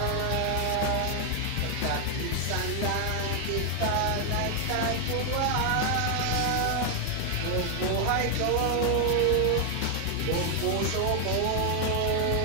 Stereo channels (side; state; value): both; different; correlation 0.00